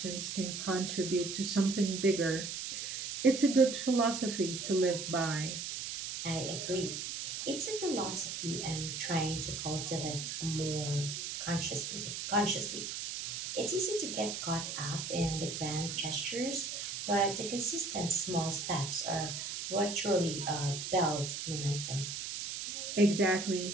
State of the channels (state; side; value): noise; right; hiss, 5 dB below the sound